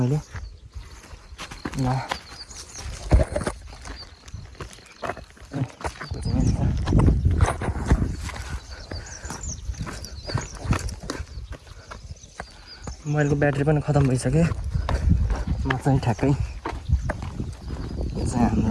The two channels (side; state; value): both; identical; correlation 1.00